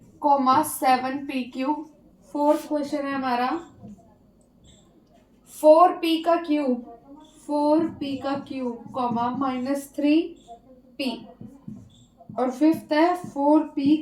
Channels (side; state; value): both; identical; correlation 1.00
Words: फोर्थ क्वेश्चन है हमारा 4p³ 4p³ -3p, और फिफ्थ है